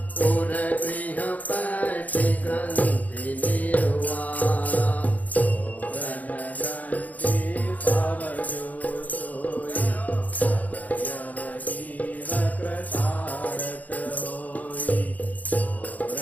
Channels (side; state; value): right; late; 0.077 ms